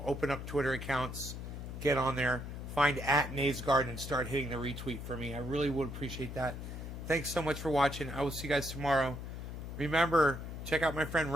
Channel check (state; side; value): noise; left; hum, 8 dB below the sound